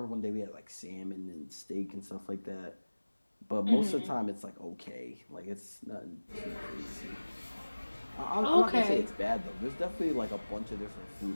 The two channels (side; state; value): both; inverted; correlation -1.00